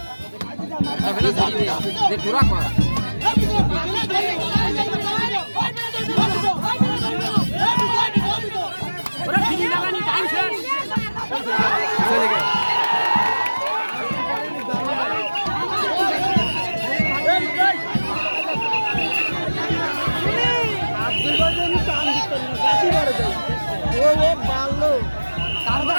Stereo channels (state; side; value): inverted; both; correlation -1.00